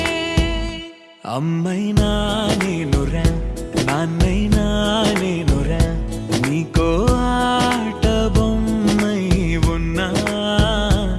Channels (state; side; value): identical; both; correlation 1.00